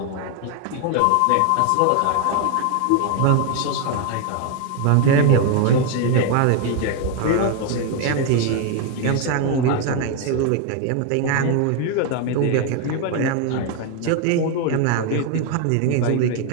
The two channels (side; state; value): both; different; correlation 0.01